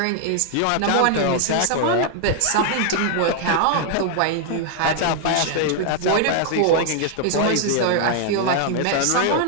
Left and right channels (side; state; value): both; different; correlation 0.00